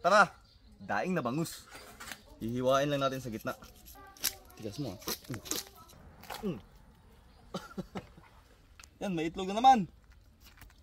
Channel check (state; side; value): identical; both; correlation 1.00